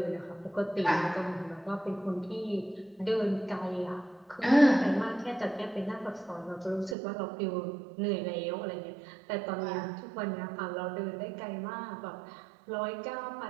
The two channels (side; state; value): left; drops out; at 7.0 s